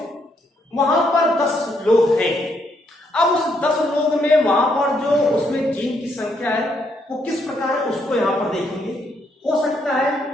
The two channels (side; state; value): both; normal; correlation 0.74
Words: वहां पर 10 लोग हैं। अब उस 10 लोग में वहां पर जो उसमें जीन की संख्या है वो किस प्रकार है उसको यहां पर देखेंगे। हो सकता